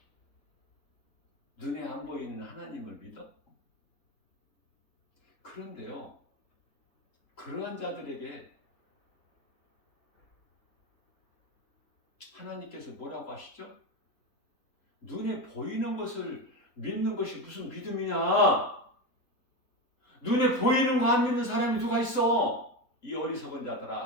눈에 안 보이는 하나님을 믿어? 그런데요, 그러한 자들에게 하나님께서 뭐라고 하시죠? 눈에 보이는 것을 믿는 것이 무슨 믿음이냐? 눈에 보이는 거 안 믿는 사람이 누가 있어? 이 어리석은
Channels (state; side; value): late; right; 3.7 ms